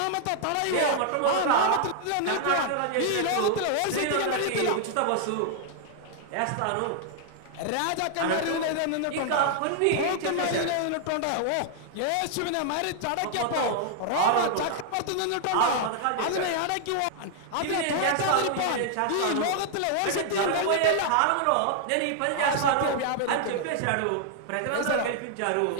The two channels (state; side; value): different; both; correlation -0.01